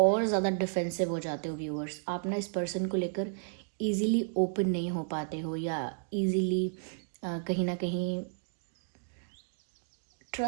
ज़्यादा डिफेंसिव हो जाते हो व्यूअर्स। आप ना इस पर्सन को लेकर ईज़िली ओपन नहीं हो पाते हो, या ईज़िली कहीं ना कहीं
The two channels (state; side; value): silent; left; digital silence